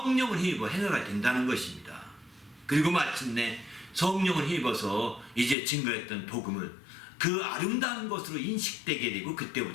힘입어 행하가 된다는 것입니다. 그리고 마침내 성령을 힘입어서 이제 증거했던 복음을 그 아름다운 것으로 인식되게 되고,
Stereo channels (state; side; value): drops out; right; at 5.6 s